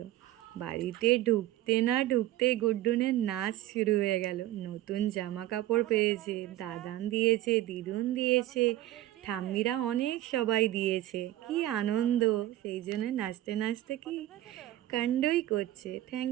বাড়িতে ঢুকতে না ঢুকতেই গুড্ডুনের নাচ শুরু হয়ে গেল। নতুন জামা কাপড় পেয়েছে, দাদান দিয়েছে, দিদুন দিয়েছে, ঠাম্মিরা অনেক সবাই দিয়েছে। কি আনন্দ! সেই জন্য নাচতে নাচতে কি কাণ্ডই করছে।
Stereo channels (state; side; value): quieter; left; 14.8 dB